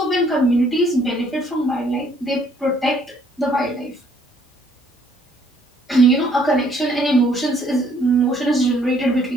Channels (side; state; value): both; normal; correlation 0.64